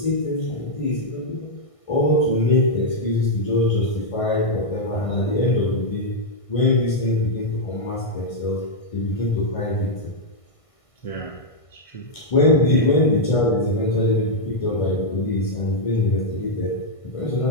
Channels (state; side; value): late; right; 1.6 ms